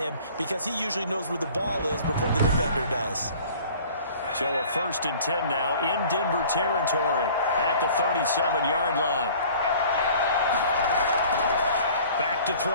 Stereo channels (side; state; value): both; inverted; correlation -0.49